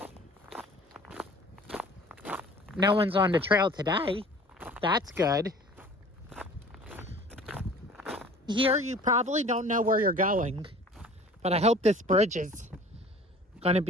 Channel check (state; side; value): normal; both; correlation 0.46